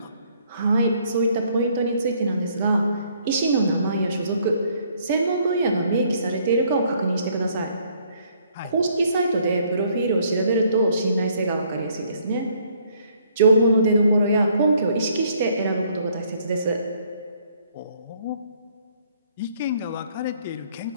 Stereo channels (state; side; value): inverted; both; correlation -0.65